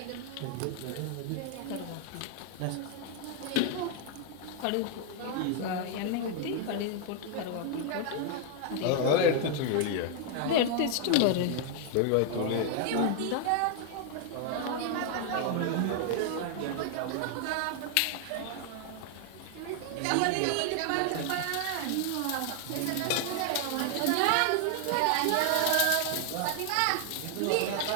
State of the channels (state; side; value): different; both; correlation 0.00